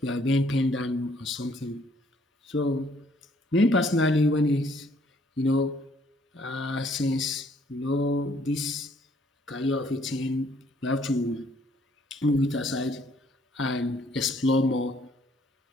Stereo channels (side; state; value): both; normal; correlation 0.64